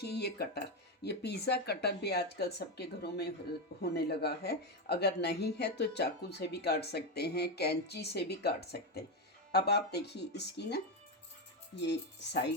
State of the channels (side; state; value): both; normal; correlation 0.10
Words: ये कटर, ये पिज़्ज़ा कटर भी आजकल सबके घरों में होने लगा है। अगर नहीं है तो चाकू से भी काट सकते हैं, कैंची से भी काट सकते हैं। अब आप देखिए इसकी ना ये